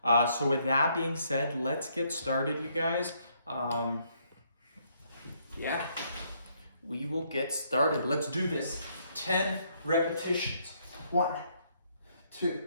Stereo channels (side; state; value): both; inverted; correlation -0.70